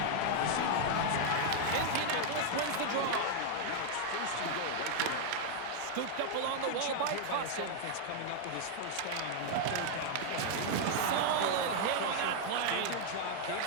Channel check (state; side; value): different; both; correlation 0.00